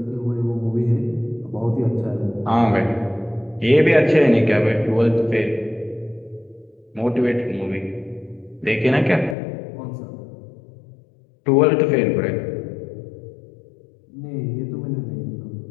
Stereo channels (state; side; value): drops out; right; at 9.3 s